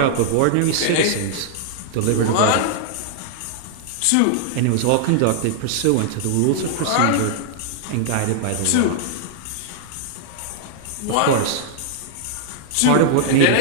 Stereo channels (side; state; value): both; different; correlation -0.01